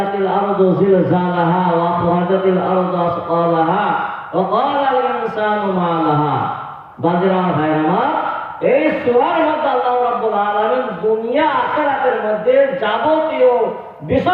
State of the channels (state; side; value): identical; both; correlation 1.00